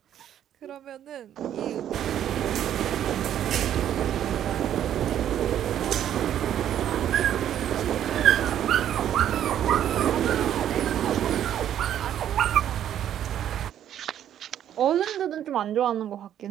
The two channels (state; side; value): quieter; left; 10.6 dB